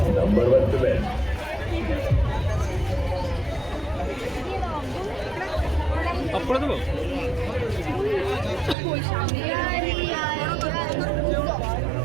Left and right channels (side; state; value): left; drops out; at 8.8 s